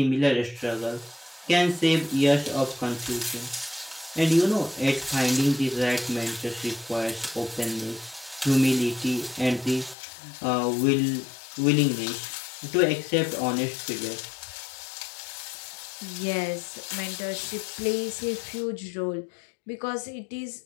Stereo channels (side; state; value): right; drops out; at 10.0 s